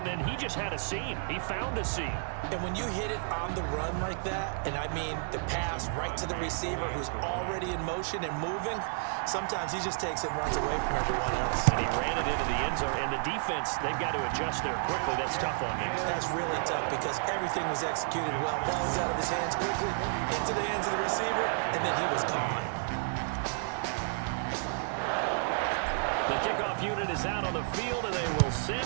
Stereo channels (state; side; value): silent; left; digital silence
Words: then he just had a seam. He found a seam. And when you hit it on the run like that, and I mean the pass right to the receiver who's already in motion and moving, sometimes he just takes it and runs away from everyone else. And he ran it into the end zone. And the defense, they've got to adjust there quickly. That's tough on him. That's really tough because everything was executed well. Ball was out of his hands quickly, into the hands of the receiver, and then he was gone. The kickoff unit is out on the field, and they will